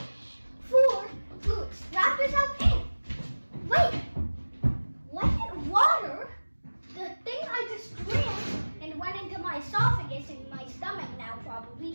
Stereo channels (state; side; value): inverted; both; correlation -1.00